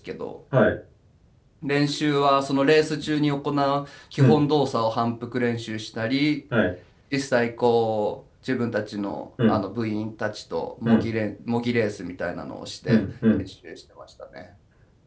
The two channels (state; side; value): identical; both; correlation 1.00